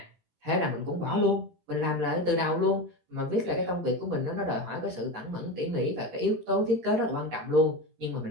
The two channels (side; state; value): left; late; 17 ms